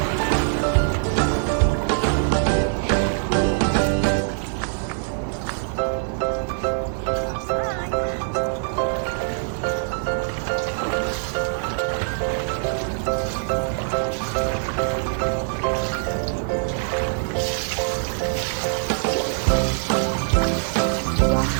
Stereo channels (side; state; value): left; silent; digital silence